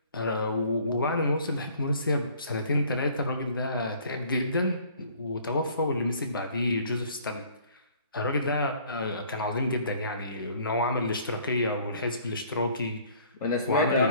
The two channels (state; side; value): inverted; both; correlation -0.55